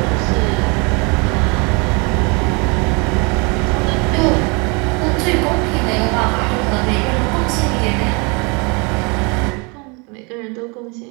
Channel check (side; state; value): left; quieter; 30.8 dB